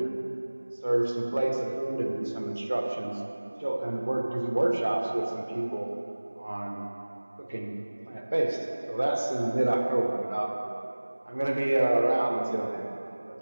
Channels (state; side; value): inverted; both; correlation -1.00